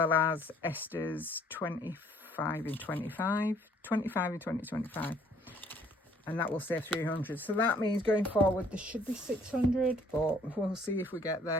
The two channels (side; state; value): both; normal; correlation 0.60